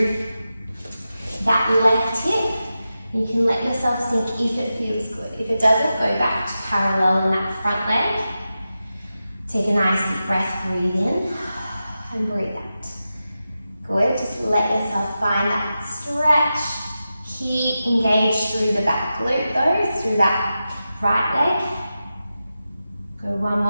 that left hip. You can let yourself sink if it feels good. If it doesn't, go back to parallel in that front leg. Take a nice deep breath, breathe in. And breathe out. Good, just let yourself find that stretch. Keep engaged through the back glute though, through that right leg. Go one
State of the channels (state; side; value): inverted; both; correlation -0.92